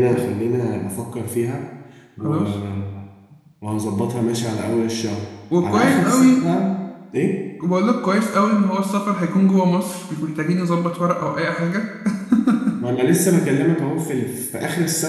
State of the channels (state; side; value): identical; both; correlation 1.00